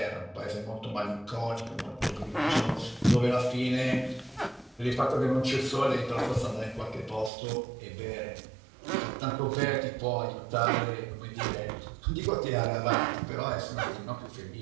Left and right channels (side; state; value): left; drops out; at 7.3 s